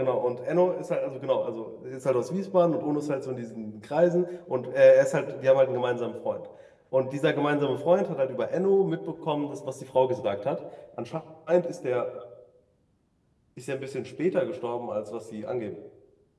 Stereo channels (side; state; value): both; identical; correlation 1.00